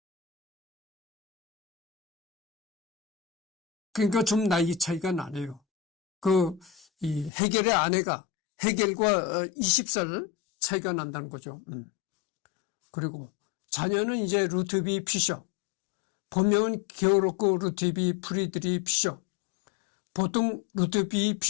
그러니까 좀 나이 차이가 나네요. 이 헤겔의 아내가 헤겔과 20살 차이가 난다는 거죠. 그리고 자녀는 이제 루트비 피셔, 본명은 게오르크 루트비 프리드리 피셔, 보통 루트비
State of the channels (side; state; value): right; drops out; at 7.3 s